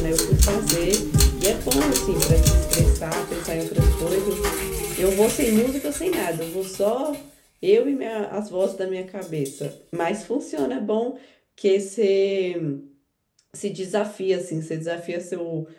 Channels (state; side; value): identical; both; correlation 1.00